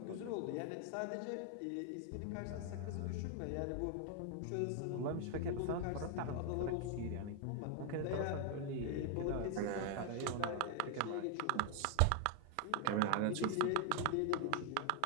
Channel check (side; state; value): both; different; correlation 0.00